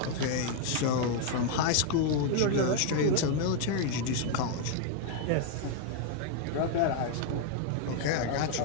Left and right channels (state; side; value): different; both; correlation 0.00